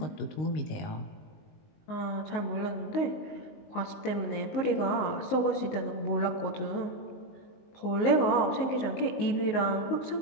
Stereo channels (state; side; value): late; right; 19 ms